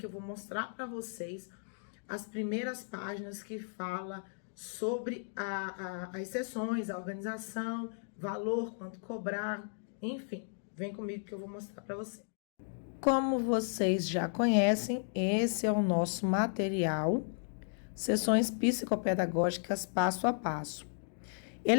eu vou mostrar para vocês as primeiras páginas que fala sobre as sessões, a organização, valor, quanto cobrar, enfim. Vem comigo que eu vou mostrar para vocês. Como vocês já conhecem, esse é o nosso material, Sessões Psicopedagógicas Passo a Passo.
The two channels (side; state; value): right; silent; digital silence